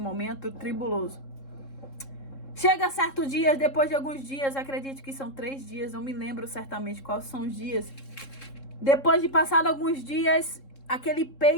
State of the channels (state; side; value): late; right; 3.7 ms